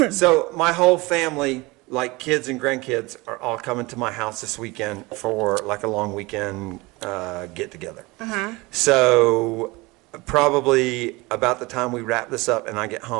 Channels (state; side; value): quieter; left; 23.4 dB